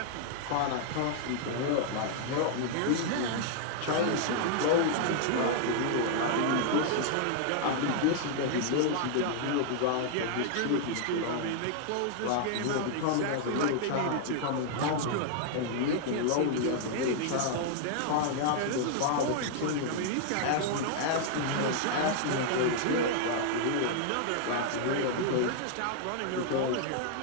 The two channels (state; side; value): different; both; correlation -0.01